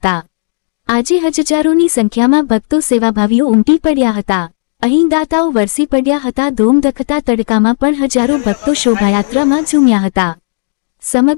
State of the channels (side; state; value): right; silent; digital silence